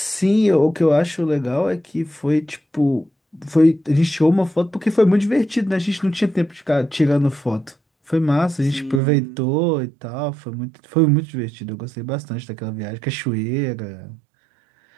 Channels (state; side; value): drops out; left; at 9.0 s